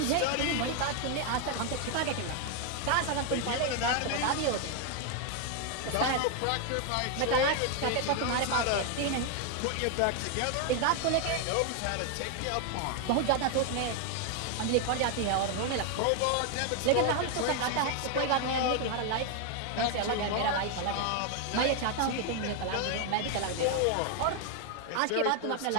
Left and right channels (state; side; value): different; both; correlation 0.01